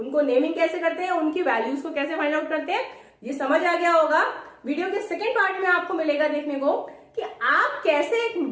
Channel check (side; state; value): both; identical; correlation 1.00